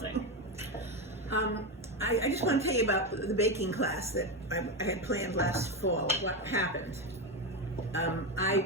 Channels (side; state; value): both; normal; correlation 0.14